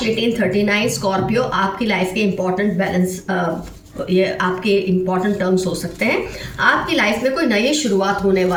1839 स्कॉर्पियो आपकी लाइफ के इंपॉर्टेंट बैलेंस, ये आपके इंपॉर्टेंट टर्म्स हो सकते हैं। आपकी लाइफ में कोई नई शुरुआत होने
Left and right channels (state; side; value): identical; both; correlation 1.00